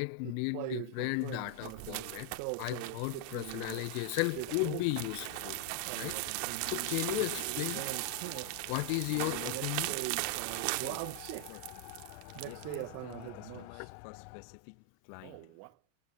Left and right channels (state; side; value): different; both; correlation 0.00